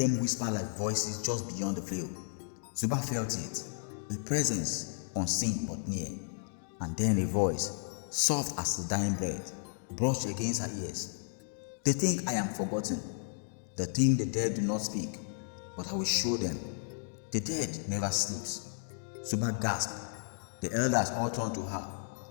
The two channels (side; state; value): right; silent; digital silence